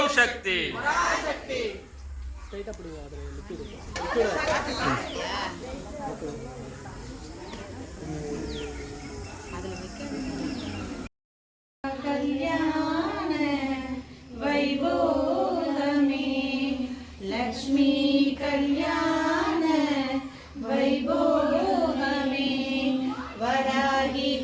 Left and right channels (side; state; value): both; identical; correlation 1.00